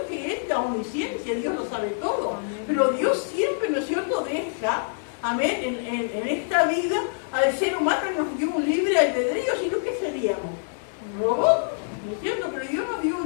Que es la omnisciencia, Dios lo sabe todo. Pero Dios siempre, ¿no es cierto?, deja, amén, en esta vida al ser humano nos dio un libre albedrío, sino que seríamos robots, ¿no es cierto? Pero Dios nos dio un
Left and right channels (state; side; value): silent; right; digital silence